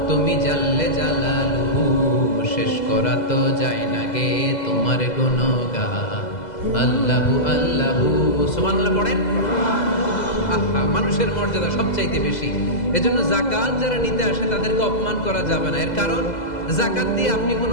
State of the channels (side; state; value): right; late; 2.0 ms